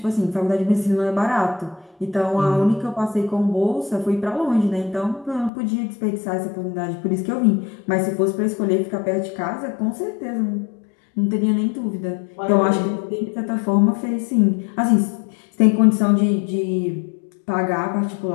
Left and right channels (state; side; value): drops out; right; at 5.5 s